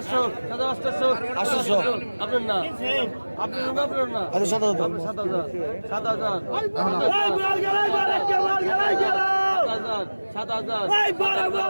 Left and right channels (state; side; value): inverted; both; correlation -1.00